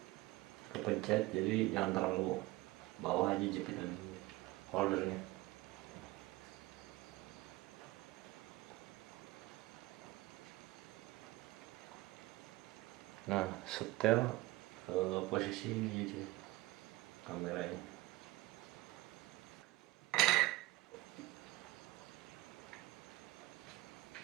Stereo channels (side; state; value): left; quieter; 19.0 dB